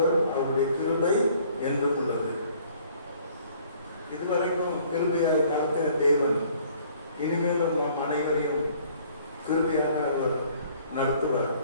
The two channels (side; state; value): both; inverted; correlation -0.58